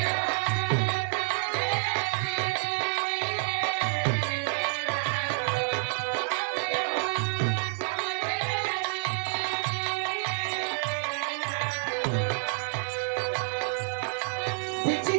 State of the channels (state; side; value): silent; left; digital silence